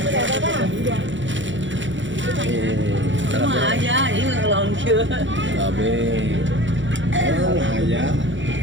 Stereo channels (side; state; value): left; late; 0.55 ms